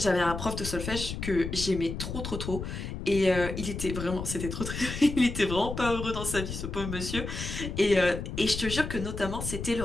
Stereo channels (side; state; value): left; noise; rumble, 6 dB below the sound